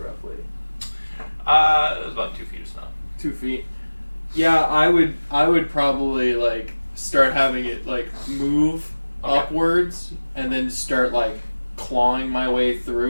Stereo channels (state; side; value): inverted; both; correlation -1.00